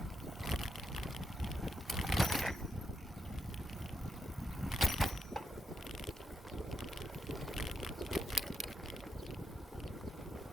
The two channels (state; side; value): normal; both; correlation 0.82